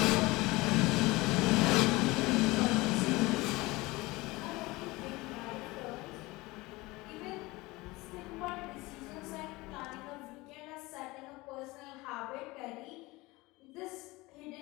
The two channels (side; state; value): right; quieter; 21.8 dB